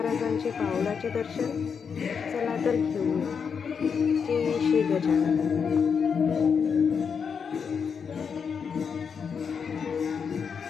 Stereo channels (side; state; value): right; quieter; 6.4 dB